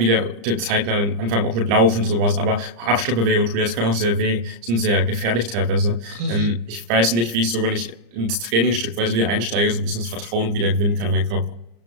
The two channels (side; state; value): left; late; 35 ms